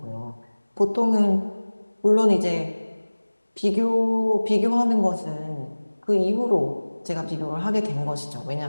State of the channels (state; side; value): inverted; both; correlation -1.00